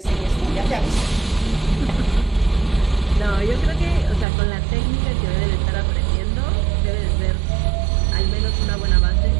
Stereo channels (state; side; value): drops out; left; at 4.2 s